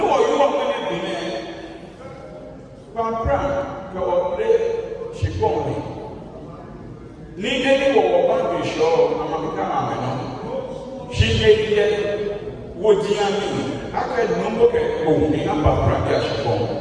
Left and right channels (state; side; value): identical; both; correlation 1.00